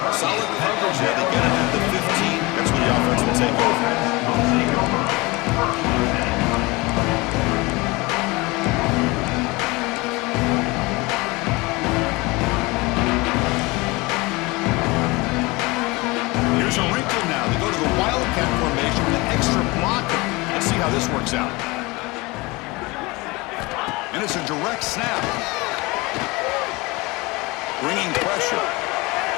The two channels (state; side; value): quieter; right; 23.8 dB